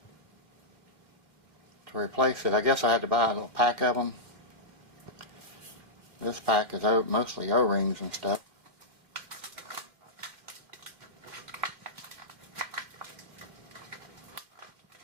to replace it. I guess I had to buy a little pack of them. This pack is mostly O-rings and stuff.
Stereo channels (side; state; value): left; late; 2.3 ms